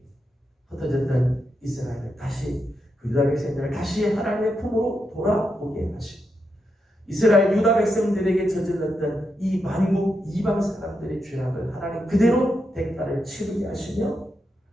흩어졌던 이스라엘을 다시 그 유다 백성들을 다시 하나님의 품으로 돌아오게 하시고 이스라엘 유다 백성들에게 저질렀던 이 만국 이방 사람들의 죄악을 하나님 그대로 대가를 치르게 하시며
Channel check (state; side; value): normal; both; correlation 0.84